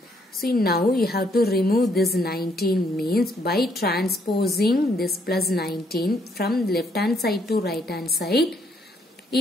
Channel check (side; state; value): both; normal; correlation 0.71